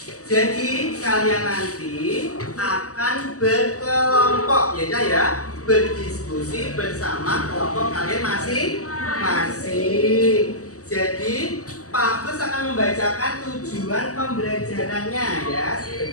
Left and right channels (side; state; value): right; late; 0.66 ms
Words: Jadi kalian nanti akan berkelompok ya, berdiskusi bersama kelompok kalian masing-masing. Jadi Pak Agus akan membacakan tujuan pembelajarannya ya,